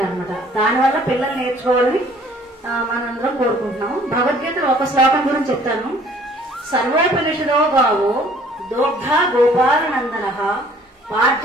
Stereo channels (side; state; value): both; normal; correlation 0.57